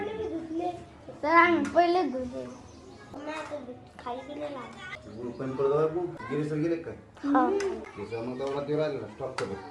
गुळ पण पडतो गिरीसर गेले काय? मग तेवढा ते राहिलेला स्टॉप करू.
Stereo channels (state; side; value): identical; both; correlation 1.00